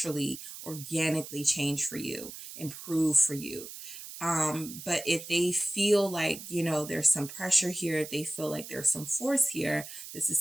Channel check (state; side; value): noise; right; hiss, 12 dB below the sound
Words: organically change for you, improve for you. But if they feel like, you know, there's some pressure here, if they feel like there's some force here, this